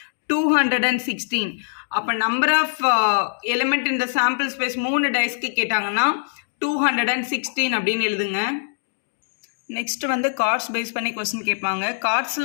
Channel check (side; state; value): right; silent; digital silence